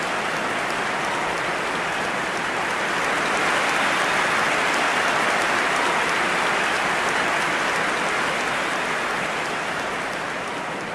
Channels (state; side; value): identical; both; correlation 1.00